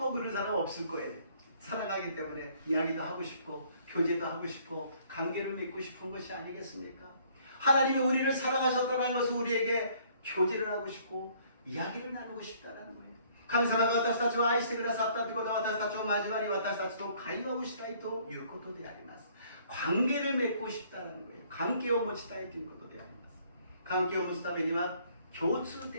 그런 사람 없을 거예요. 사랑하기 때문에 이야기도 하고 싶고 교제도 하고 싶고 관계를 맺고 싶은 것이 아니겠습니까? 하나님이 우리를 사랑하셨다는 것은 우리에게 교제를 하고 싶고 이야기를 나누고 싶다는 거예요. 神様が私たちを愛してくださったということは私たちを交わり私たちと会話をしたいということであります。 관계를 맺고 싶다는 거예요. 관계を持ちたいということであります。 관계を持つためには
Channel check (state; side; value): inverted; both; correlation -0.61